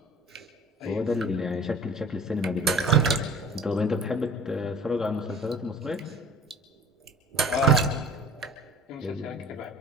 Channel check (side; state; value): both; normal; correlation 0.46